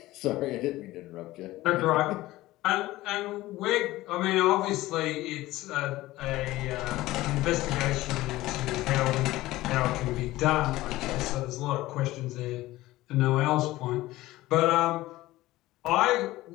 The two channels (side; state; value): right; quieter; 17.4 dB